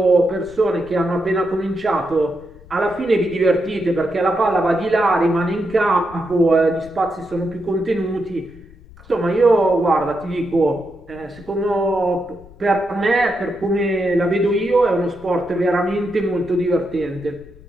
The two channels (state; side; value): noise; left; rumble, 22 dB below the sound